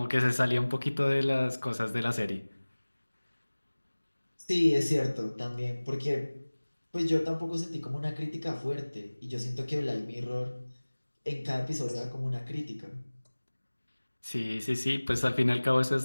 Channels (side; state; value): both; inverted; correlation -1.00